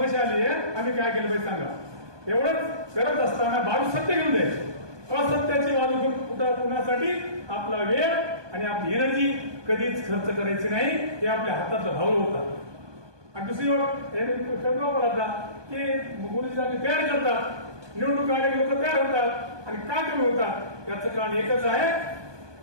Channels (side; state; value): left; late; 1.2 ms